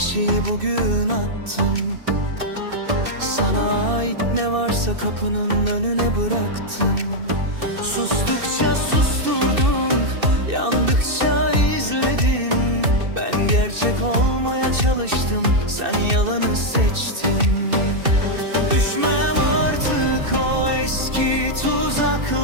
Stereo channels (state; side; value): late; left; 2.6 ms